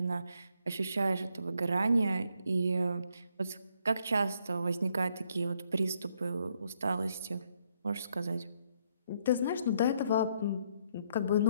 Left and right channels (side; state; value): both; inverted; correlation -0.72